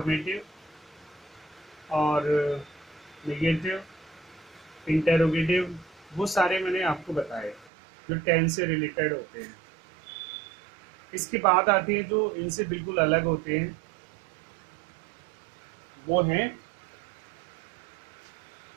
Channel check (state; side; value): drops out; left; at 7.7 s